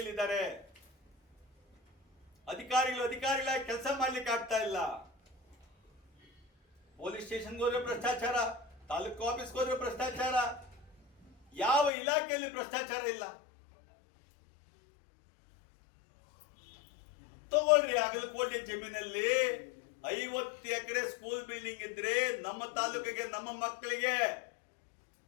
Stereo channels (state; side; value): drops out; right; at 11.9 s